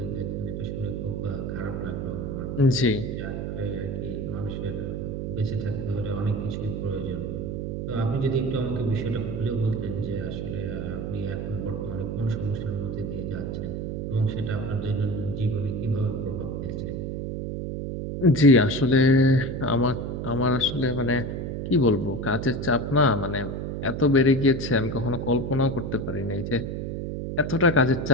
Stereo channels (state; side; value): noise; right; hum, 4 dB below the sound